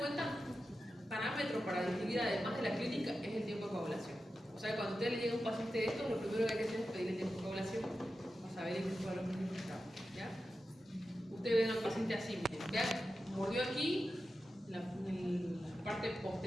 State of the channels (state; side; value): normal; both; correlation 0.91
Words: Parámetro para distinguir además de la clínica es el tiempo de coagulación. O sea, cuando a usted le llega un paciente de esto, lo primero que hay que hacer es pedir el tiempo de coagulación para saber en qué cuadro clínico está. ¿Ya? Usted ve a un paciente así, miren, ¿ya? Mordió aquí, en la parte